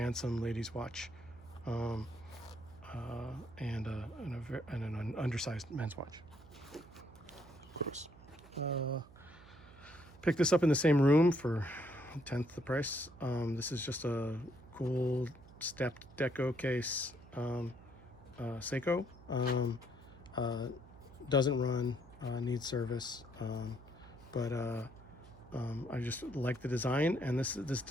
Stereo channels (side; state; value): right; noise; hum, 21 dB below the sound